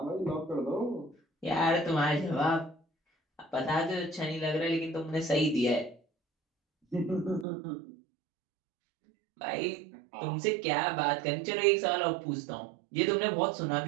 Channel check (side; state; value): left; drops out; at 7.5 s